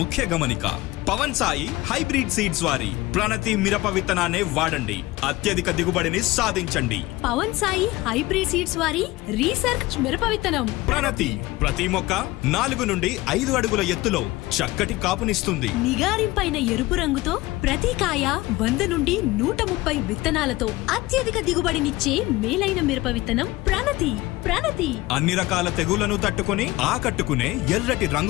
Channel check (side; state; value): right; quieter; 19.3 dB